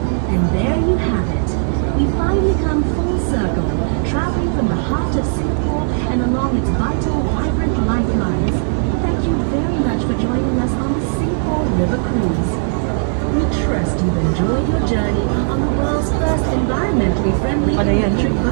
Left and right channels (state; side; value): silent; left; digital silence